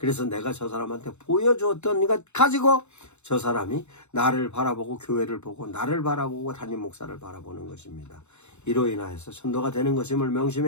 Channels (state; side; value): late; right; 0.82 ms